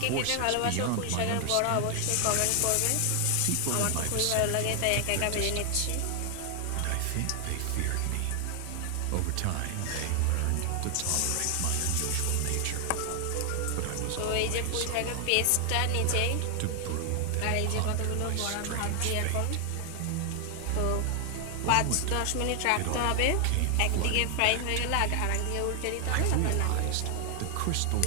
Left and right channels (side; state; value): both; different; correlation 0.00